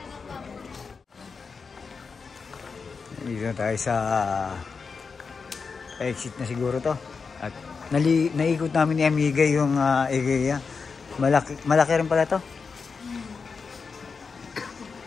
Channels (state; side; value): quieter; right; 5.1 dB